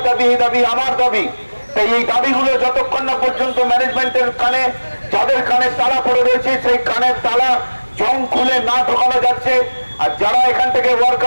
দাবি, এই দাবি আমার দাবি। তাই এই দাবিগুলো যতক্ষণ না পর্যন্ত ম্যানেজমেন্টের কানে, যাদের কানে তালা পড়ে রয়েছে, সেই কানের তালা জং খুলে না ঢোকানো যাচ্ছে, আর যারা এখান থেকে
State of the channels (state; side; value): inverted; both; correlation -1.00